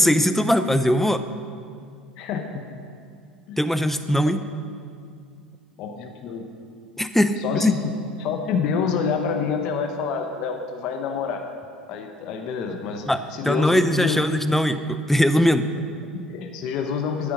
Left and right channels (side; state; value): both; normal; correlation 0.71